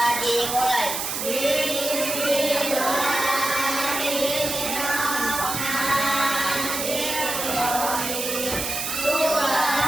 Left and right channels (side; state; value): right; noise; hiss, 3 dB below the sound